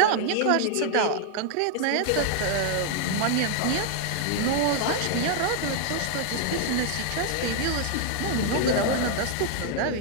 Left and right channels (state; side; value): different; both; correlation -0.01